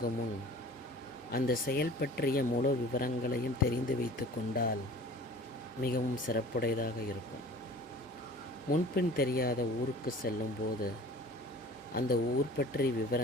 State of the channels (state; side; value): normal; both; correlation 0.44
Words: முன் அந்த செயல் பற்றிய முழு விவரங்களையும் தெரிந்து வைத்து கொண்டால் மிகவும் சிறப்புடையதாக இருக்கும். முன்பின் தெரியாத ஊருக்கு செல்லும்போது அந்த ஊர் பற்றிய